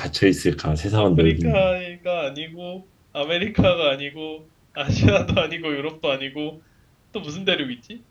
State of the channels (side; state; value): both; identical; correlation 1.00